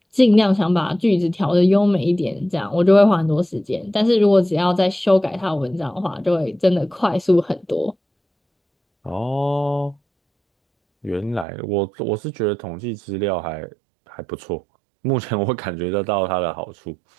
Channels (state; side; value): drops out; left; at 11.5 s